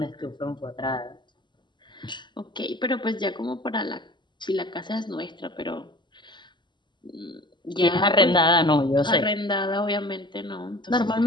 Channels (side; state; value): right; late; 0.22 ms